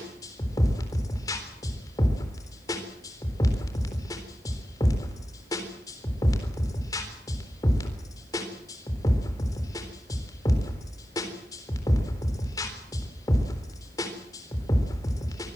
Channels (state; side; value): normal; both; correlation 0.93